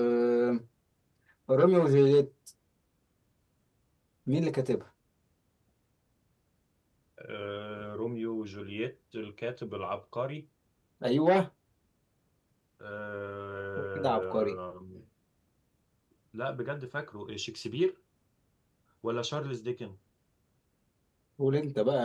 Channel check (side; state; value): both; identical; correlation 1.00